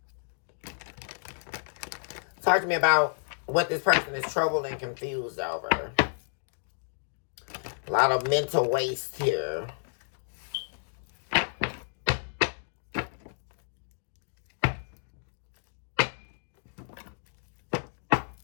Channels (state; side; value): silent; right; digital silence